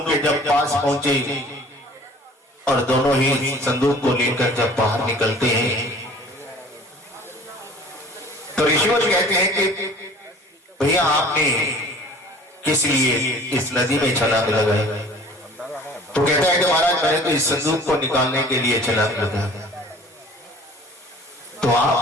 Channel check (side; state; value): both; normal; correlation 0.48